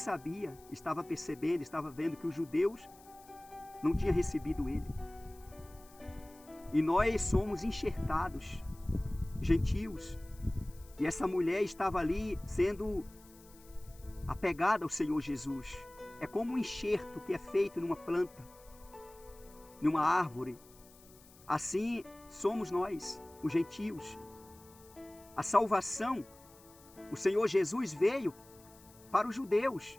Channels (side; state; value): left; noise; hiss, 24 dB below the sound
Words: estava percebendo, estava vendo que os judeus não tinham recebido ele. E nós somos enxertados, gentios. E essa mulher estava ali sendo apegada ao Senhor Jesus. É como um enxerto que é feito numa planta, numa árvore. Assim somos nós, os gentios. A salvação, o Senhor Jesus veio para os judeus